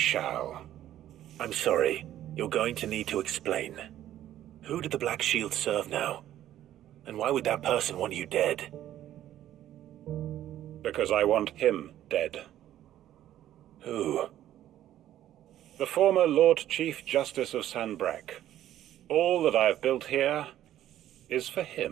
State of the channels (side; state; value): left; quieter; 12.4 dB